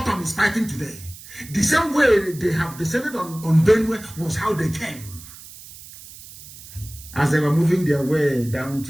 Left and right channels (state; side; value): noise; right; hiss, 17 dB below the sound